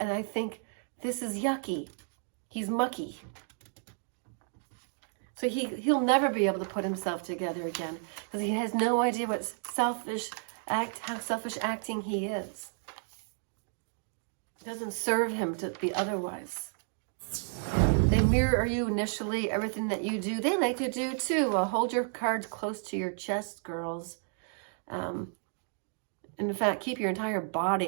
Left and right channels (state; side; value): silent; left; 56 dB below the other